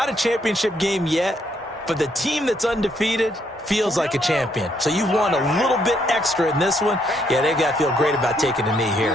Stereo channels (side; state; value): both; normal; correlation 0.72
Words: a championship game yet, but the team that's undefeated feels like a champion. So you've won a little bit extra in this one. Yeah, they got to feel great about taking a knee